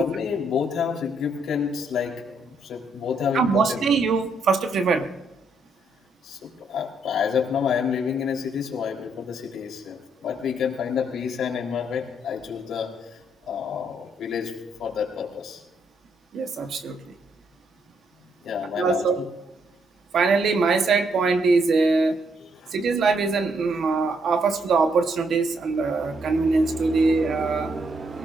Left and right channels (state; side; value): normal; both; correlation 0.74